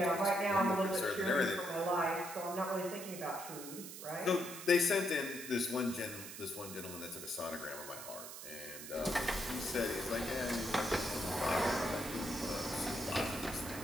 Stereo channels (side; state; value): right; noise; hiss, 11 dB below the sound